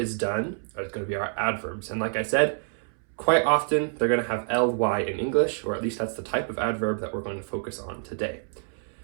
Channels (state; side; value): silent; left; 60 dB below the other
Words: done are going to be our adverbs. And like I said, quite often they're going to have ly in English, or at least that's the type of adverb that we're going to focus on today.